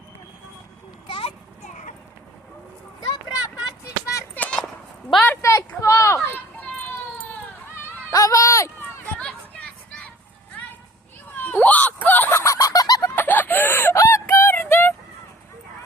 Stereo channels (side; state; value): both; normal; correlation 0.50